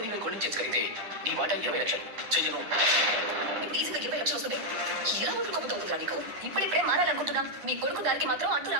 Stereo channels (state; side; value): late; left; 9.9 ms